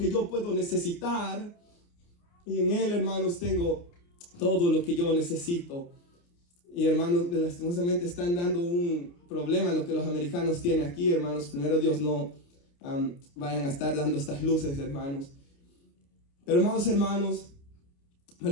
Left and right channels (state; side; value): late; right; 29 ms